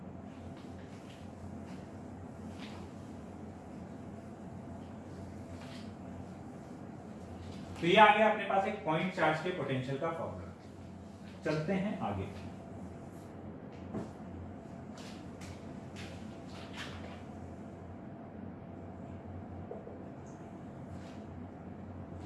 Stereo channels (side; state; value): both; identical; correlation 1.00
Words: तो ये आ गया अपने पास एक पॉइंट चार्ज के पोटेंशियल का फॉर्मूला। चलते हैं आगे।